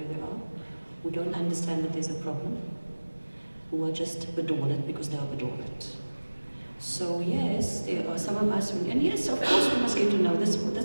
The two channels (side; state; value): both; inverted; correlation -1.00